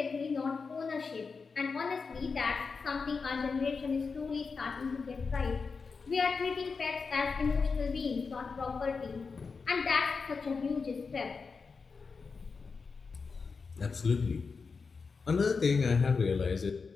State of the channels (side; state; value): right; quieter; 4.9 dB